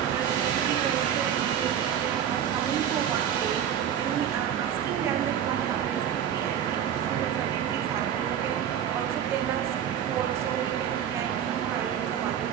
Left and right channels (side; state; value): left; quieter; 9.5 dB